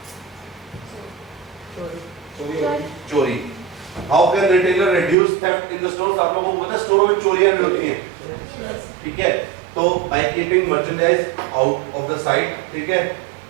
चोरी। How can retailer reduce theft in the stores, आप लोगों को पता है स्टोरों में चोरियां भी होती हैं, ठीक है। तो by keeping merchandise out of the site, ठीक है,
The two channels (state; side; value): drops out; left; at 5.2 s